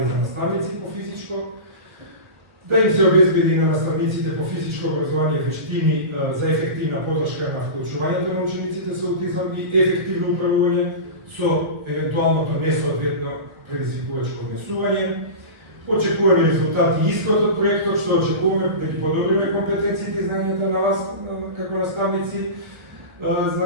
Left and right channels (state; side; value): late; left; 1.4 ms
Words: за наставници по физичко, да им се обезбеди на наставниците по физичко образование вештини за ефективна подршка на вклучувањето на учениците со аутизам и ефективно управување со евентуалното несоодветно предизвикувачко однесување. Очекуваме резултати и исход од проектот, што очекуваме да ги подобриме компетенциите и знањата на вас како наставници за